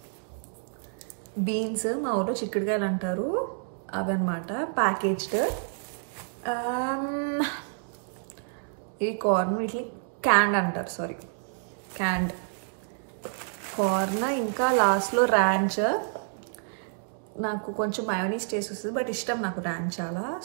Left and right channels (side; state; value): left; silent; digital silence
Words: బీన్స్, మా ఊళ్ళో చిక్కుడుకాయలు అంటారు, అవి అనమాట ప్యాకేజ్డ్. ఈ కార్న్ వీటిని క్యాండ్ అంటారు, క్యాండ్ కార్న్. ఇంకా లాస్ట్లో ర్యాంచ్. నాకు కొంచెం మయోనీస్ టేస్ట్ వస్తుంది, బట్ ఇష్టం నాకు ర్యాంచ్ చాలా.